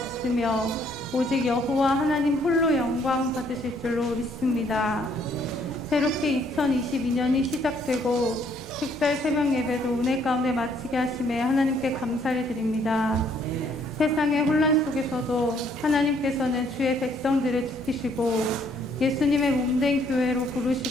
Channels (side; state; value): both; normal; correlation 0.66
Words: 오직 여호와 하나님 홀로 영광 받으실 줄로 믿습니다. 새롭게 2022년이 시작되고 특별 새벽 예배도 은혜 가운데 마치게 하심에 하나님께 감사를 드립니다. 세상의 혼란 속에서도 하나님께서는 주의 백성들을 지키시고 예수님의 몸된 교회로